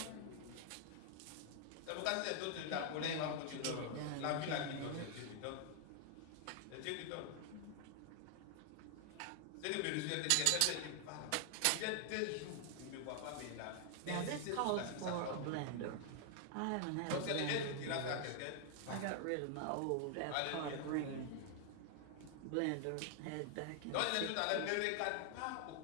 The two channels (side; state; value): both; different; correlation 0.00